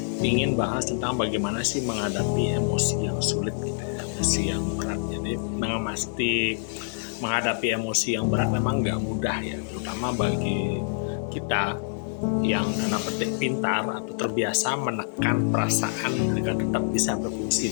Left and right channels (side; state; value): right; silent; digital silence